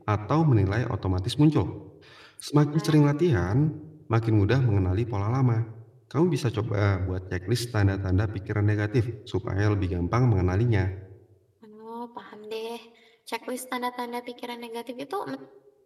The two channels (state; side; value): identical; both; correlation 1.00